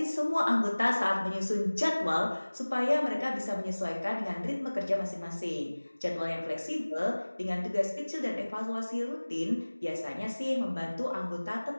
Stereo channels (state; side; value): inverted; both; correlation -1.00